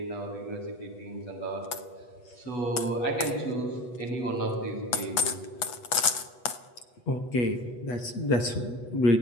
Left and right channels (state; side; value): late; right; 8.2 ms